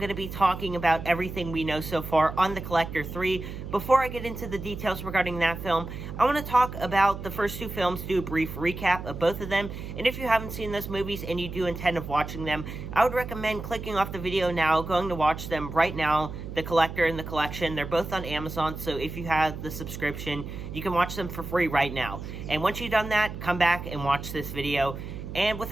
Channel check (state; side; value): noise; right; hum, 9 dB below the sound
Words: to be talking about everything we know so far on The Collector 3. Before I get into the details regarding that film, I want to talk about the first two films, do a brief recap of both of them. And if you haven't seen those movies and you do intend of watching them, I would recommend clicking off the video now, going to watch them right now, The Collector and The Collection. They're both on Amazon, so if you have the subscription, you can watch them for free right now. And once you've done that, come back and watch this video. And